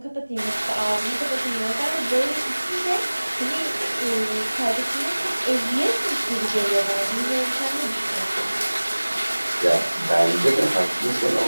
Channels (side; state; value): both; inverted; correlation -1.00